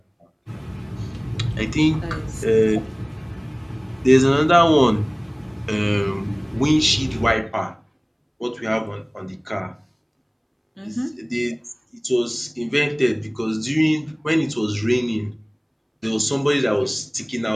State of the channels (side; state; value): both; identical; correlation 1.00